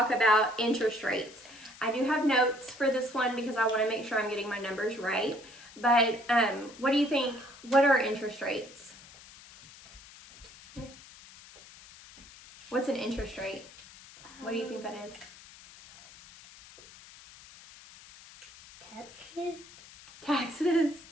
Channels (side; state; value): left; noise; hiss, 20 dB below the sound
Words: about interest rates. I do have notes for this one because I want to make sure I'm getting my numbers right. But what do you think? What are interest rates? What's an interest rate? What do you think that is? Taxes. Taxes.